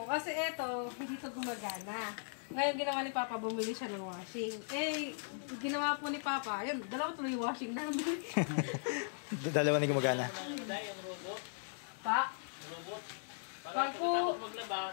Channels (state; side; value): silent; right; digital silence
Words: kasi eto, hindi to gumagana. Ngayon ginawa ni Papa, bumili siya ng washing. Eh, ginawa po ni Papa, ayun, dalawa tuloy yung washing namin. Dalawa na gumagana. Pa? Robot. Pag po... maglaba,